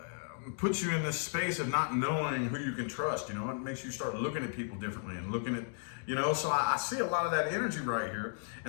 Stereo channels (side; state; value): right; silent; 55 dB below the other